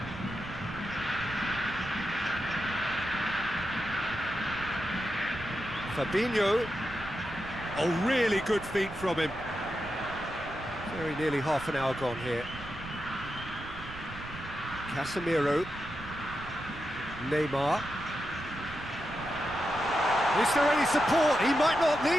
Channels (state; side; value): noise; right; rumble, 14 dB below the sound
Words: Fabinho. Oh, really good feet from him. Very nearly half an hour gone here. Casemiro. Neymar. Is there any support? He might not